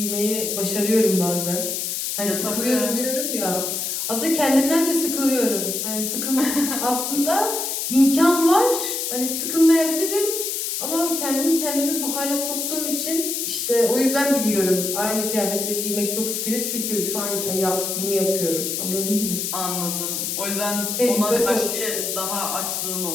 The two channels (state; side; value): noise; left; hiss, 2 dB below the sound